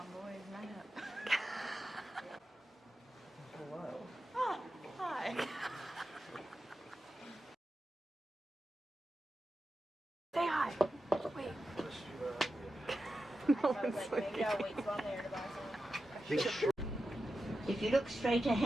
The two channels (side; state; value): both; normal; correlation 0.91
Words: boys, line up. Hello. Oh, hi. Say hi. Wait. No one's looking. If you look straight